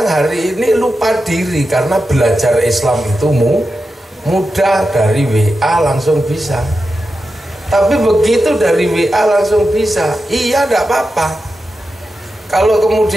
hari ini lupa diri karena belajar Islam itu mudah, dari WA langsung bisa. Tapi begitu dari WA langsung bisa, iya enggak apa-apa. Kalau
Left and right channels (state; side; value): normal; both; correlation 0.90